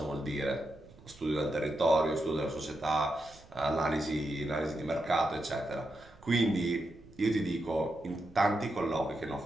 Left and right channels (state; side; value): noise; right; rumble, 23 dB below the sound